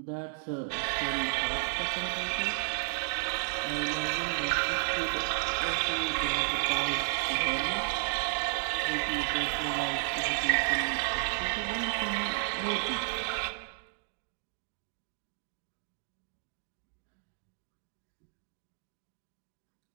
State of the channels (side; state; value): left; silent; 56 dB below the other